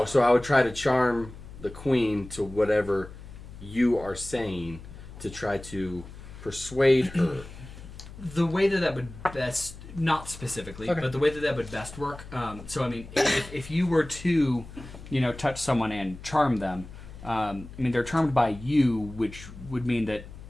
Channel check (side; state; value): left; noise; hum, 15 dB below the sound